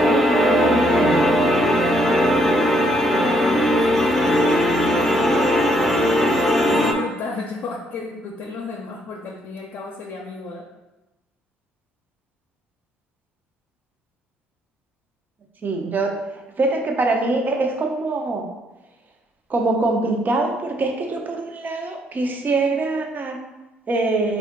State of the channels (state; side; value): normal; both; correlation 0.71